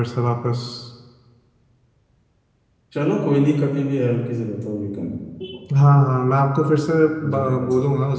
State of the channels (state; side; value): identical; both; correlation 1.00